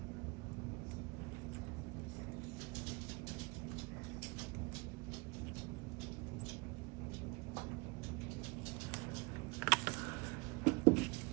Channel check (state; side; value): quieter; left; 28.1 dB